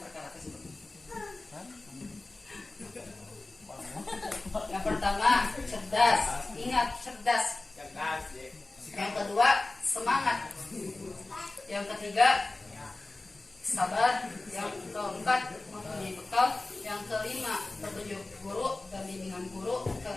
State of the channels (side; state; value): right; quieter; 3.1 dB